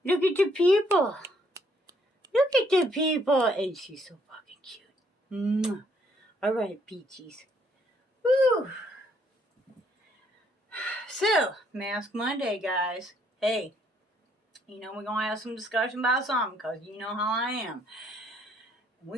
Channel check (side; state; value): both; normal; correlation 0.68